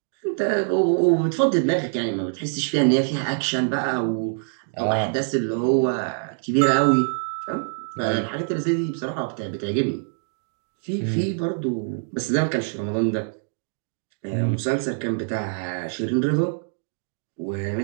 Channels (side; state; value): left; silent; digital silence